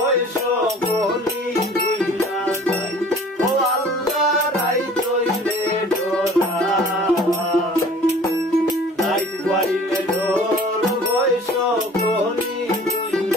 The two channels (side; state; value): both; normal; correlation 0.48